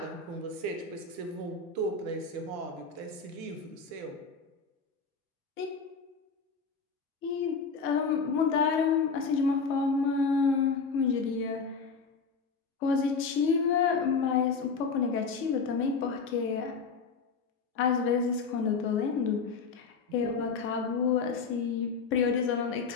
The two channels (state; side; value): quieter; right; 5.0 dB